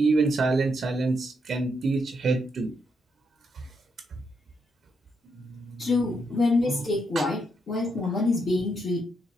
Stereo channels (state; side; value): normal; both; correlation 0.79